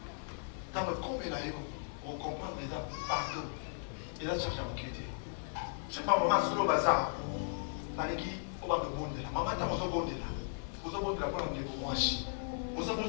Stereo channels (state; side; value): silent; right; 53 dB below the other